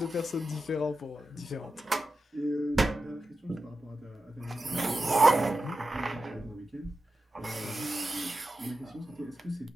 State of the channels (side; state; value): both; normal; correlation 0.92